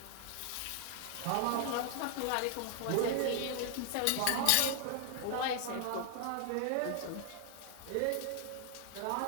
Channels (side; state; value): both; different; correlation 0.00